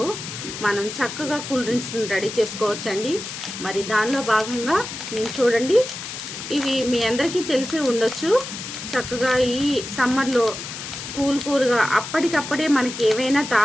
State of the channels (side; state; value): left; noise; hiss, 9 dB below the sound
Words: మనం చక్కగా కూల్ డ్రింక్స్ని రెడీ చేసుకోవచ్చండి. మరి దానిలో భాగంగా నేను చూడండి, ఇవి మీ అందరికీ తెలిసే ఉండొచ్చు. చక్కగా ఈ సమ్మర్లో కూల్గా అప్పటికప్పుడే మనకి ఏవైనా